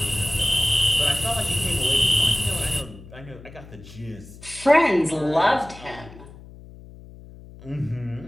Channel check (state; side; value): noise; left; hum, 18 dB below the sound